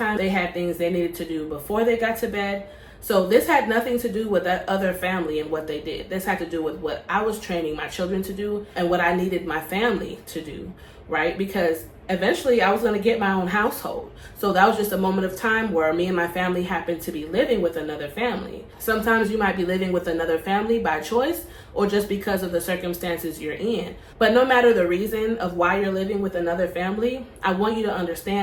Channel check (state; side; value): identical; both; correlation 1.00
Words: They had things they needed to do before they got to bed. So this had nothing to do with that other family and what they did. This had to do with what I was training my children to do and what I needed my family to do, right? Because eventually I was going to get my own household. So that was just a moment of time where me and my family happened to be living with another family. Sometimes you might be living with another family by choice or just because of the circumstances you're in. But no matter the reason of why you're living with another family, I want you to